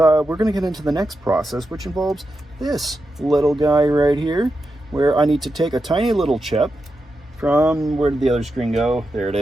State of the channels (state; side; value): normal; both; correlation 0.88